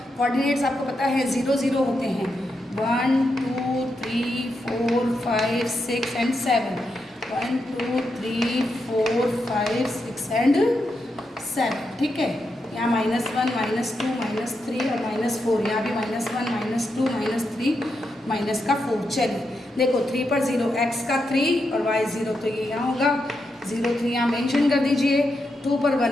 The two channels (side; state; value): both; normal; correlation 0.85